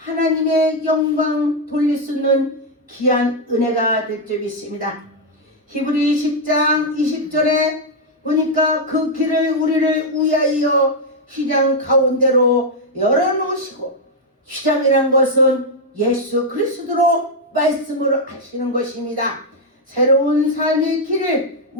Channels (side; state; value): both; normal; correlation 0.00